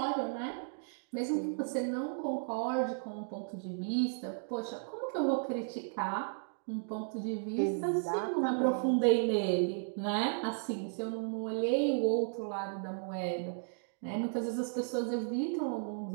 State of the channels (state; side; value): silent; left; digital silence